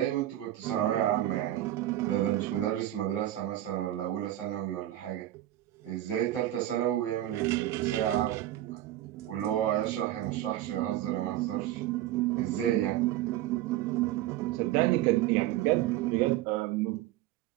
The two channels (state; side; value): quieter; left; 13.9 dB